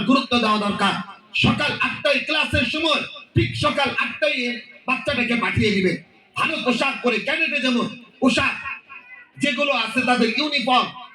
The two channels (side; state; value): both; identical; correlation 1.00